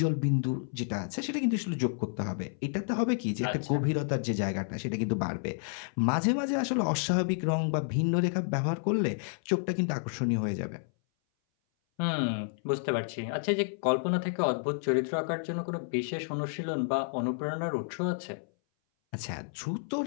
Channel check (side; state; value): right; silent; 57 dB below the other